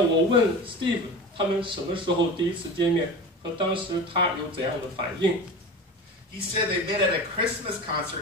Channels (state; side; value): normal; both; correlation 0.31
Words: 问 Steve 他们什么时候第一次见面，和当时他有怎样的反应？ He said they met at a Christmas